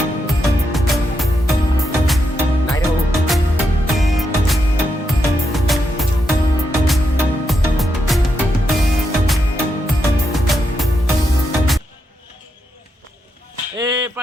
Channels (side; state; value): both; normal; correlation 0.83